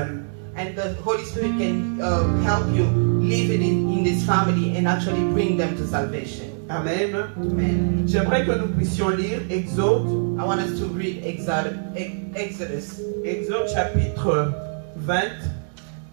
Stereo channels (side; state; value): left; silent; digital silence